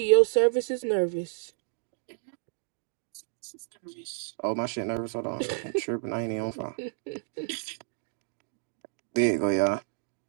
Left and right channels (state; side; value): silent; left; digital silence